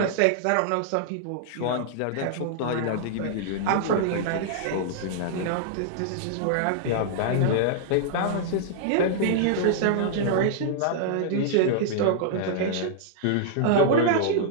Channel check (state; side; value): different; both; correlation -0.01